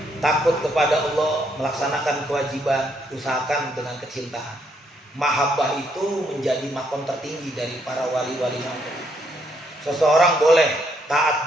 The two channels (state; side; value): normal; both; correlation 0.73